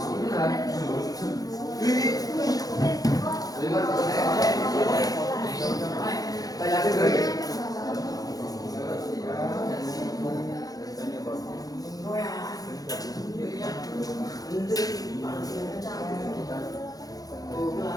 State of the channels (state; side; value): late; right; 0.18 ms